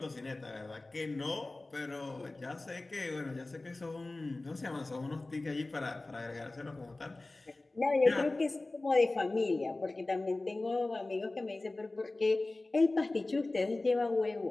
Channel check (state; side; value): quieter; right; 3.0 dB